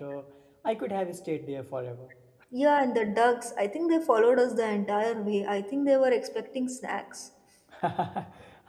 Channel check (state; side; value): identical; both; correlation 1.00